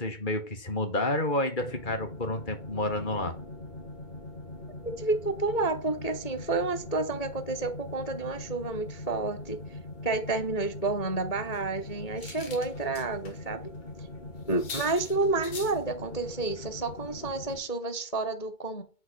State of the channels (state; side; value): late; right; 2.2 ms